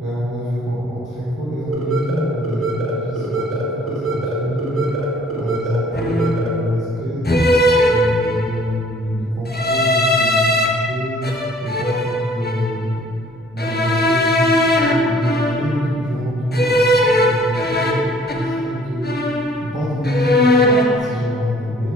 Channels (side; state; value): both; normal; correlation 0.56